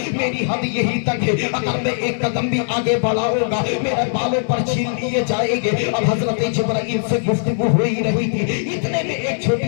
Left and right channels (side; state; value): right; silent; 66 dB below the other